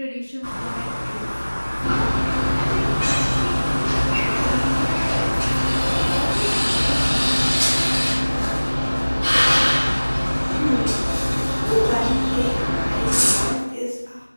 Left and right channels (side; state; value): both; inverted; correlation -1.00